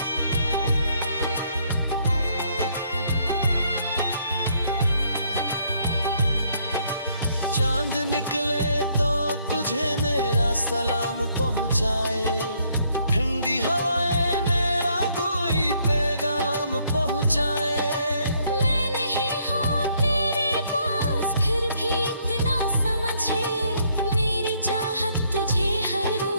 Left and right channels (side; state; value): both; inverted; correlation -0.69